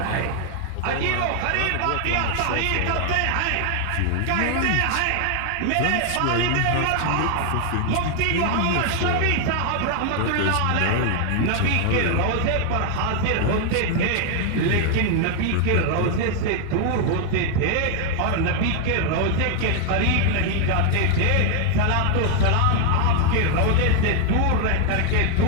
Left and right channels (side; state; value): both; different; correlation 0.00